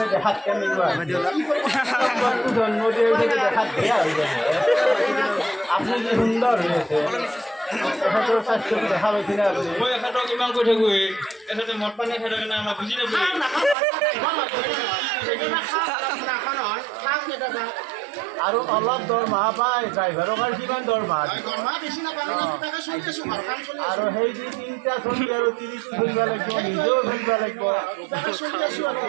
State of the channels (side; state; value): left; drops out; at 13.8 s